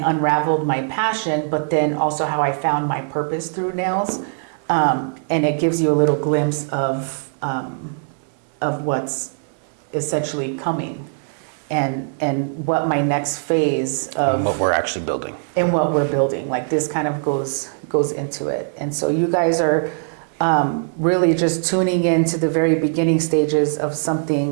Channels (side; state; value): left; silent; digital silence